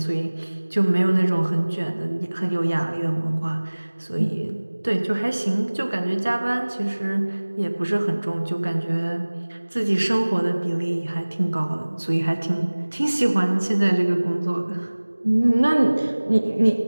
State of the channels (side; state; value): both; inverted; correlation -1.00